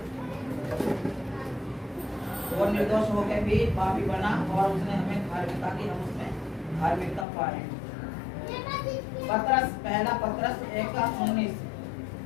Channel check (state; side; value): drops out; right; at 7.2 s